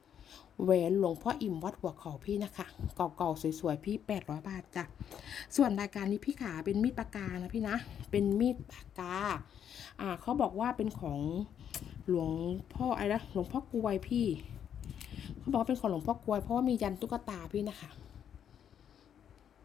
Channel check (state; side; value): quieter; right; 8.9 dB